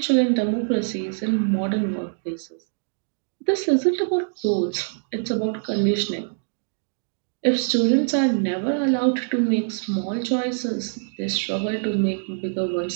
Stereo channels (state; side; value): silent; left; digital silence